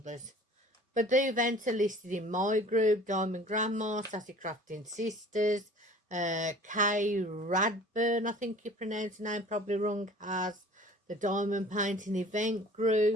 But the events are listed in my group, Diamond Grandma, Sassy Crafting Sisters, Kay Radburn, I think you pronounce the name probably wrong, has the Diamond Painting Event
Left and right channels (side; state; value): both; normal; correlation 0.47